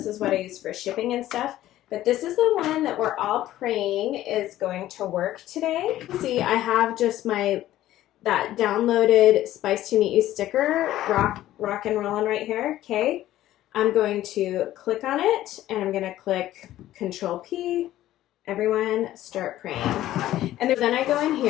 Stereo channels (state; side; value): quieter; right; 14.0 dB